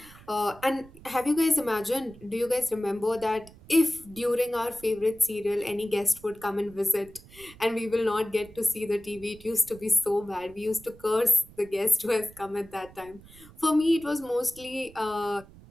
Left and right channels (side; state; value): right; noise; rumble, 22 dB below the sound